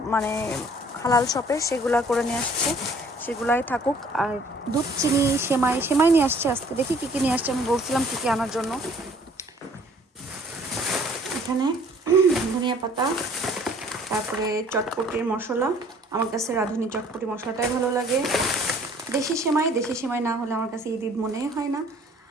মানে হালাল শপে, সেগুলা করে নিয়ে আসছে, সেগুলাই থাকুক। আর দুধ, চিনি, সেমাই নিয়ে আসছে আজকে। দেখি কী কী নিয়ে আসছে, আমি বলছিলাম কী কী আনার জন্য। এখানে ধনিয়া পাতা, তারপরে চটপটির মশলা। আমার কাছে রাঁধুনি চটপটি মশলাটাই ভালো লাগে। দেশি সেমাই না হলে আমার কাছে ঈদ ঈদ মনে হয় না,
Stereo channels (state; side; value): normal; both; correlation 0.56